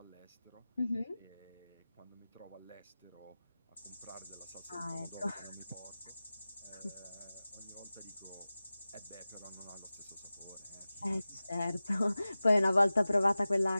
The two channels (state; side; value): inverted; both; correlation -0.97